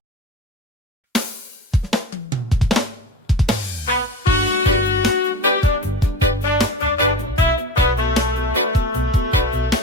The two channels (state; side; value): normal; both; correlation 0.31